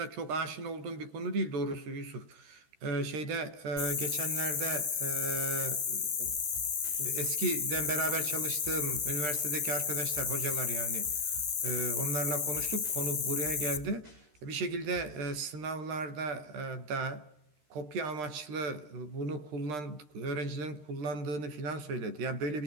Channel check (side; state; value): left; late; 13 ms